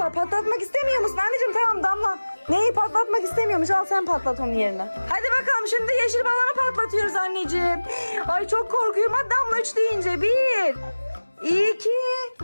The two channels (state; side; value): inverted; both; correlation -1.00